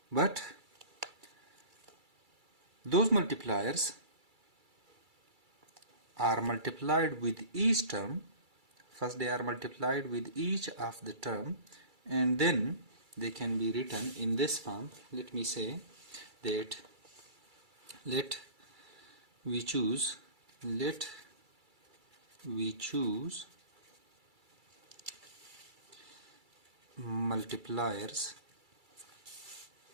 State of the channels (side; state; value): left; late; 2.3 ms